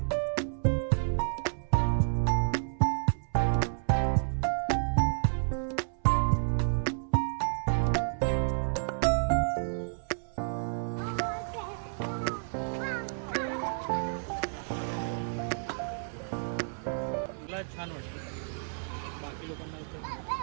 छान वाटतं. बाकी लोकांना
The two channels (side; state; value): left; silent; 57 dB below the other